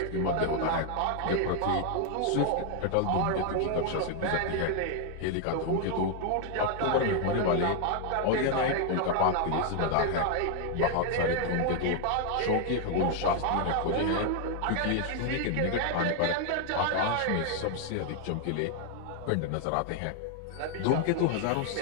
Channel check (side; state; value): both; different; correlation 0.00